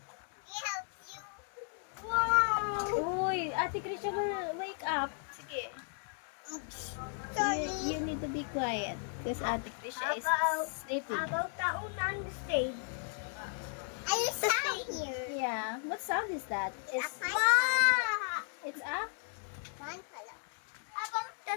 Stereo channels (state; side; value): silent; right; 54 dB below the other